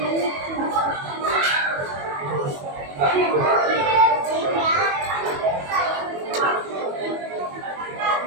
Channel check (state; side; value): late; left; 21 ms